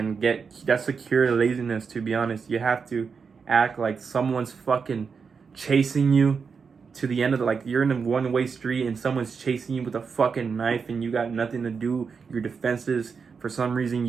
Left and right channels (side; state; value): left; quieter; 5.6 dB